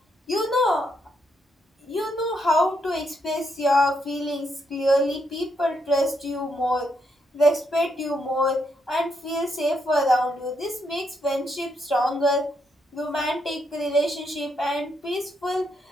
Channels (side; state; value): both; normal; correlation 0.78